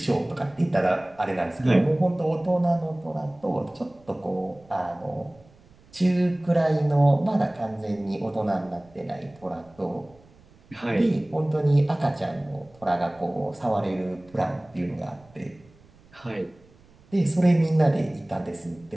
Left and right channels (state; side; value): noise; right; rumble, 28 dB below the sound